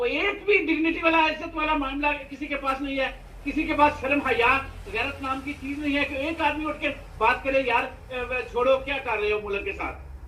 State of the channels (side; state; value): both; identical; correlation 1.00